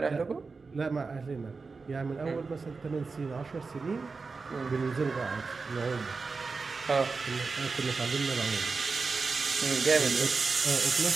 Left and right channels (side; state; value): left; quieter; 4.4 dB